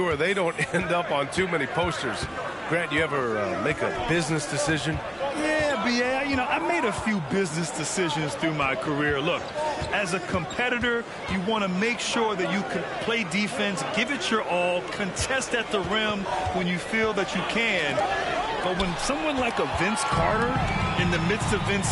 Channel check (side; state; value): both; identical; correlation 1.00